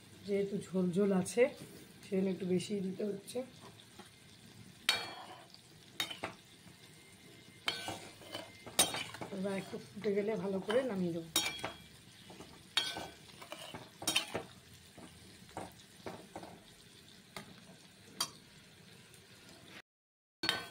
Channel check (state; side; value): identical; both; correlation 1.00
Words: যেহেতু ঝোল ঝোল আছে সেজন্য একটু বেশিই দিতে হচ্ছে। এবার একটু ফুটে গেলে ভালো করে নামিয়ে দেবো।